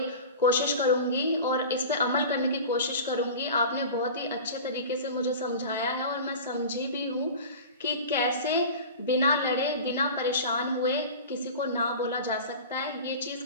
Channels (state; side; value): inverted; both; correlation -0.35